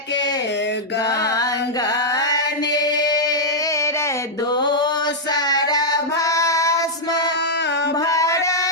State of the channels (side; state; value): both; normal; correlation -0.05